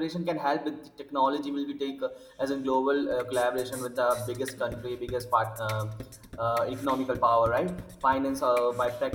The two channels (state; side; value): identical; both; correlation 1.00